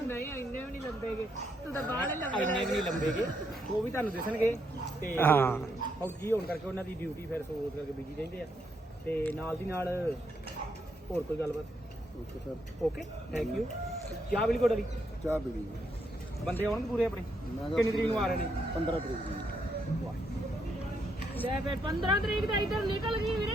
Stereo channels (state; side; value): normal; both; correlation 0.76